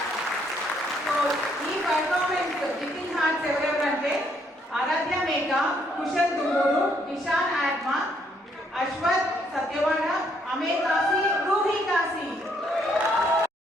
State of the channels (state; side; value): normal; both; correlation 0.70